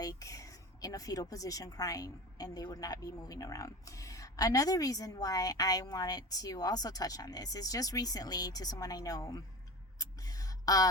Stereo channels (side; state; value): both; normal; correlation 0.32